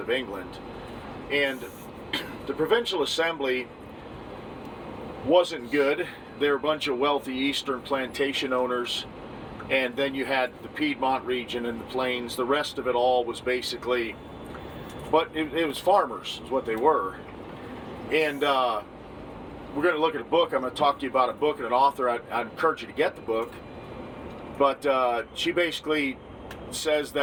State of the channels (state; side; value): identical; both; correlation 1.00